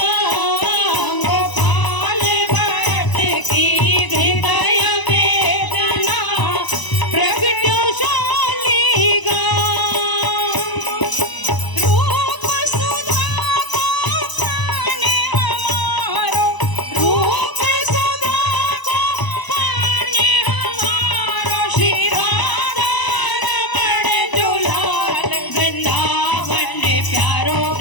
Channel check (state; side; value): late; right; 1.0 ms